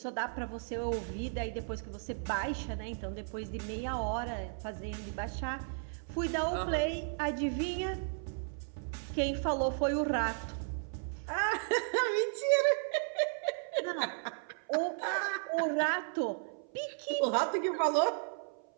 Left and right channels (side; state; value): left; silent; 55 dB below the other